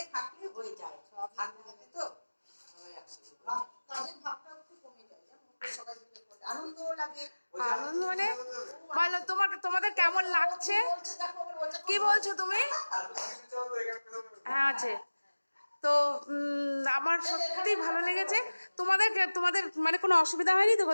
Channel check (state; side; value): inverted; both; correlation -1.00